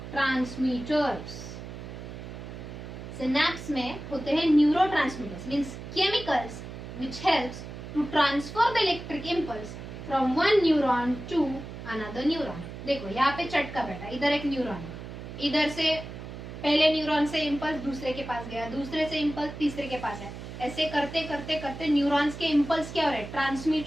सिनेप्स में होते हैं neurotransmitters, means chemicals which helps to transfer the electric impulse from one neuron to another neuron. देखो यहाँ पे चटका बैठा, इधर एक न्यूरॉन है, इधर से पहले न्यूरॉन से इम्पल्स दूसरे के पास गया, दूसरे से इम्पल्स तीसरे के पास है. ऐसे करते करते करते न्यूरॉन्स के इम्पल्स क्या हो रहे हैं?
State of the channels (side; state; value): right; noise; hum, 11 dB below the sound